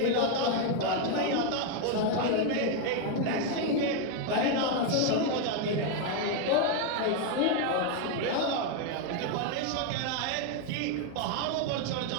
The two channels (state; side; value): different; both; correlation 0.01